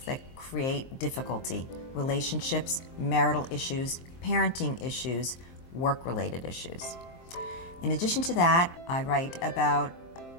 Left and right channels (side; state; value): right; late; 23 ms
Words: that create difficulty. Relationships, marital issues, parenting issues, work-related issues. In addition to that, I write about